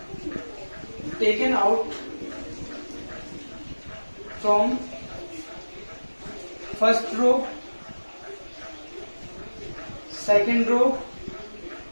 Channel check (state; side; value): inverted; both; correlation -1.00